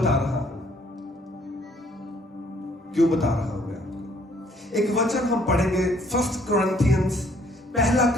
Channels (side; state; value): both; normal; correlation 0.63